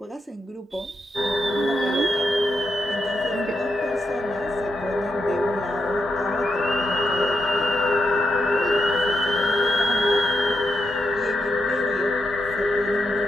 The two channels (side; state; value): both; normal; correlation 0.83